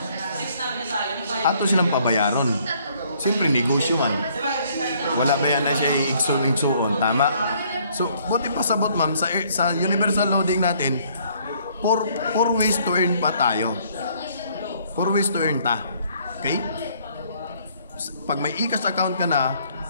ato silang pabayaron. Siyempre, negosyo man. Wala ba yan na siya igsoon, tama? So, buti pa sabot ma'am, sa universal loading natin, 4 ways to earn pa tayo. 4 ways to earn ta. Okay? Pag may e-cash account ka na,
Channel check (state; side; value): inverted; both; correlation -0.63